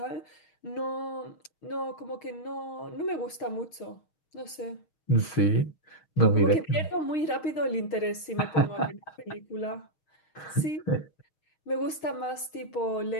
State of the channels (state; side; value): late; right; 6.4 ms